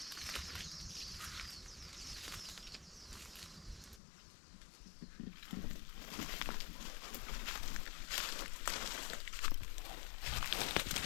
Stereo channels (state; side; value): drops out; right; at 4.0 s